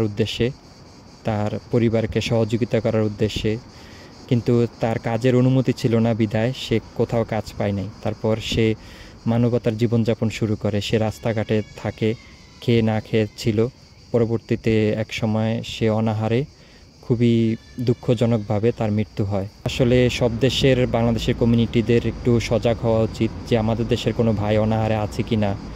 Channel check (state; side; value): identical; both; correlation 1.00